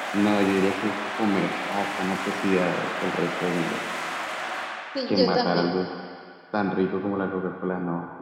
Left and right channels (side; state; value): both; identical; correlation 1.00